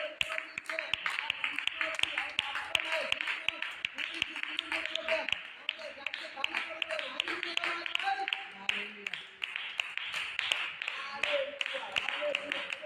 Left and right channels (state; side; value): identical; both; correlation 1.00